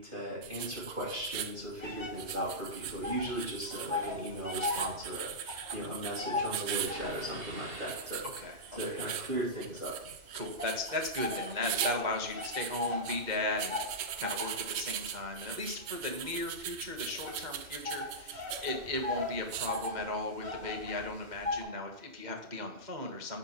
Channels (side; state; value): left; late; 3.1 ms